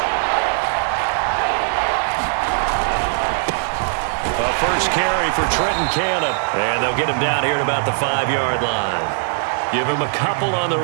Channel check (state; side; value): silent; left; 66 dB below the other